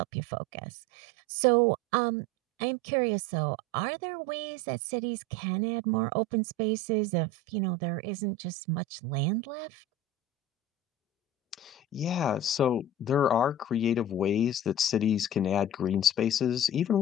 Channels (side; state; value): both; normal; correlation 0.33